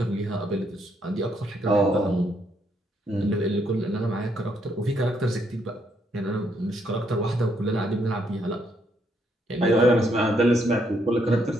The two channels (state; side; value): normal; both; correlation 0.74